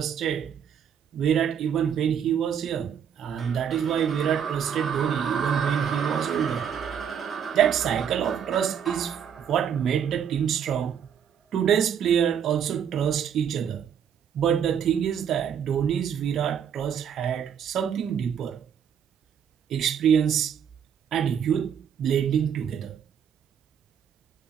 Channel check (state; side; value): quieter; left; 8.2 dB